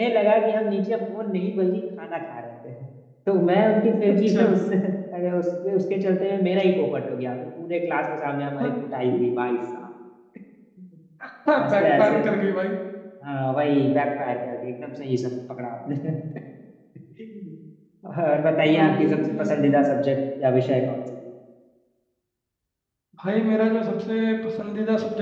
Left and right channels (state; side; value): identical; both; correlation 1.00